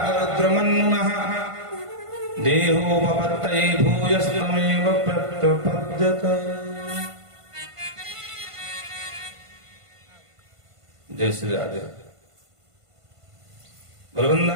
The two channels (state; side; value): late; left; 1.5 ms